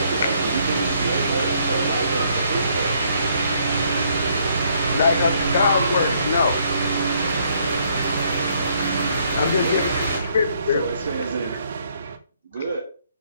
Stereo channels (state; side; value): inverted; both; correlation -0.68